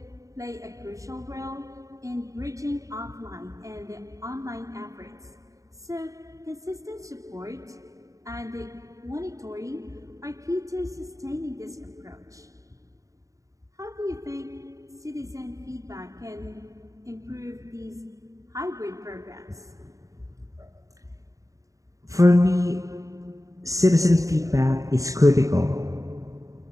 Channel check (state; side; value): late; left; 0.16 ms